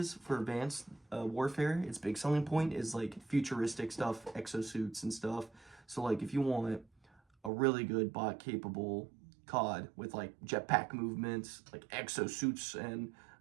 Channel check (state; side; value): drops out; left; at 7.5 s